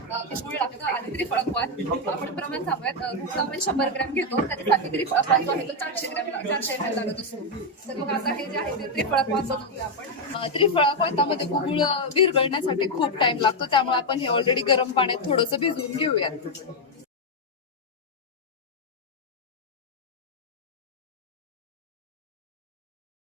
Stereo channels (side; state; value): both; normal; correlation 0.02